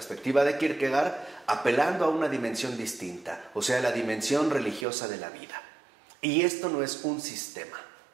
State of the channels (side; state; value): left; drops out; at 4.9 s